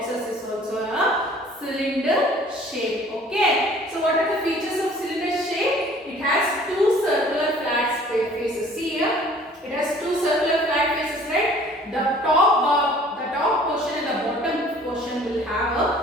is also a cylinder shape. Okay. So what are the features of cylinder shape? It has 2 circular flat faces. See here, it has 2 circular flat faces, right? The top portion and the bottom portion will have a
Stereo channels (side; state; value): both; normal; correlation 0.52